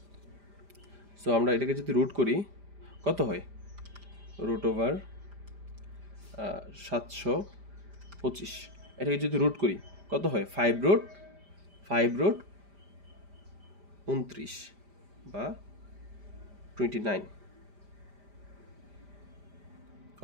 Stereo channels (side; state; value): left; late; 5.0 ms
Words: কত হয়, √725, এটাকে যদি রুট করি কত হয়, 5√29 বা 29।